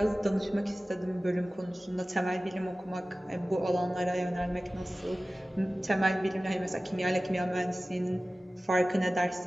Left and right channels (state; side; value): normal; both; correlation 0.96